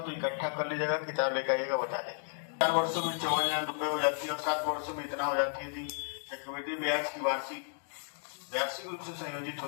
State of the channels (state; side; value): silent; right; digital silence